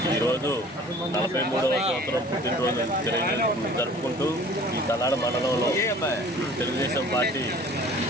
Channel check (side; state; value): both; normal; correlation 0.48